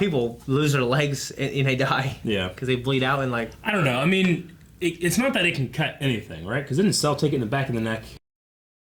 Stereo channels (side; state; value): both; identical; correlation 1.00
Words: lose their legs and they die. Yeah. Because they bleed out and like. I don't know. I mean, it's not that it can cut anything, right? Because didn't Cell take it in the back of the neck?